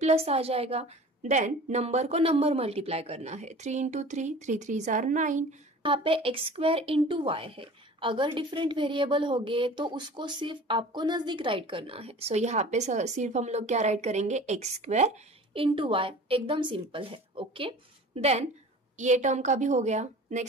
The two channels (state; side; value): normal; both; correlation 0.42